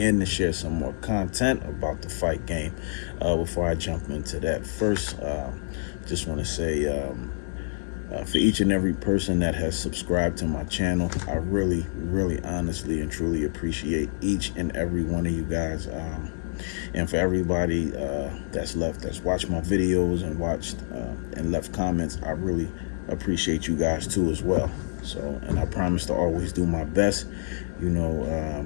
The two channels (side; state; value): right; silent; digital silence